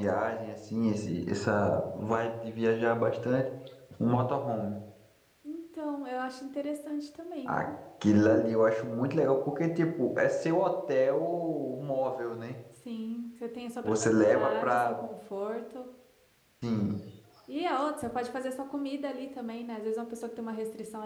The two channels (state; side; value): identical; both; correlation 1.00